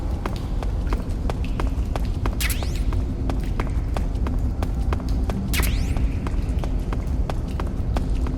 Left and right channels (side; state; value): both; identical; correlation 1.00